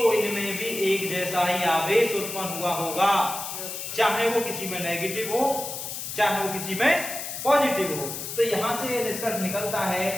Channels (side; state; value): left; noise; hiss, 6 dB below the sound